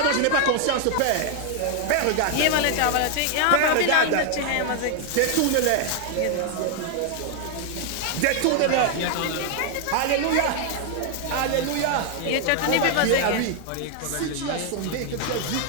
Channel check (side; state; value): both; different; correlation 0.00